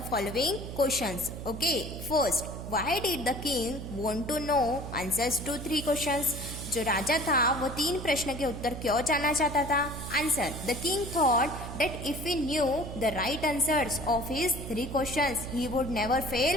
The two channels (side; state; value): right; noise; hum, 9 dB below the sound